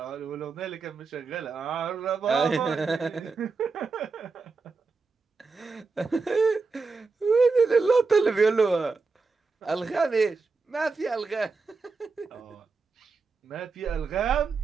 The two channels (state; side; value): quieter; left; 4.3 dB